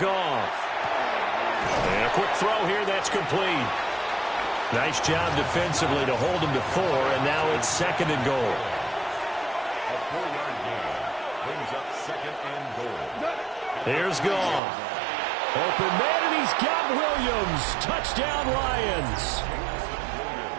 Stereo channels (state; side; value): drops out; left; at 14.6 s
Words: And a quick throw here that's complete. Nice job defensively to hold him to 4, and now it's 2nd and goal. A 4-yard gain brings up 2nd and goal. Here's Goff. Open man, and he's got Williams. Touchdown, Lions.